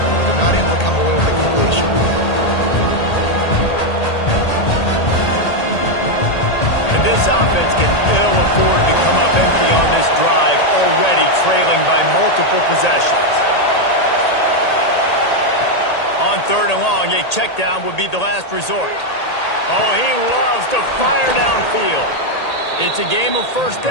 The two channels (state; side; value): late; right; 1.8 ms